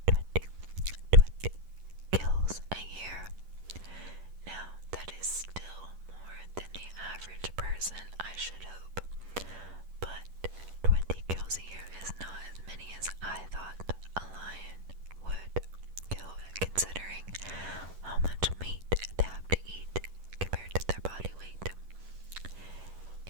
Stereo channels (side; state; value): left; late; 11 ms